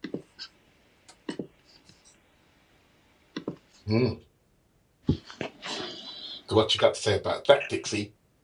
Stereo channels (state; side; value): identical; both; correlation 1.00